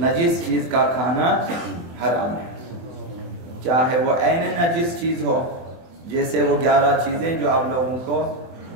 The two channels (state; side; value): late; left; 24 ms